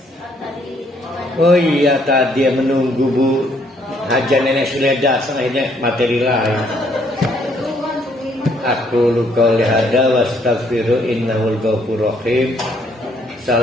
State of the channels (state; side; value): normal; both; correlation 0.68